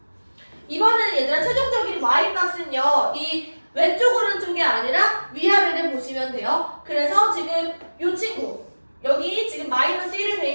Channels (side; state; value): both; inverted; correlation -1.00